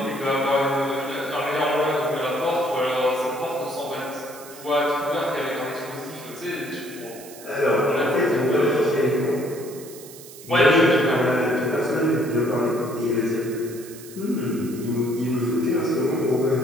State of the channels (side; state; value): right; noise; hiss, 17 dB below the sound